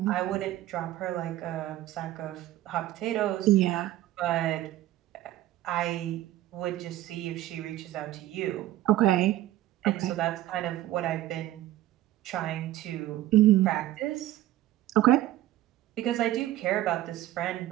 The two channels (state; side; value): quieter; left; 14.5 dB